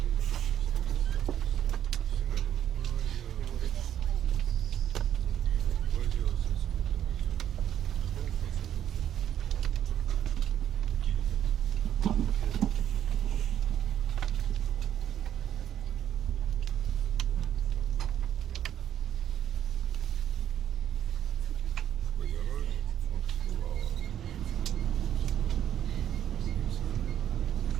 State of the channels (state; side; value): quieter; left; 10.4 dB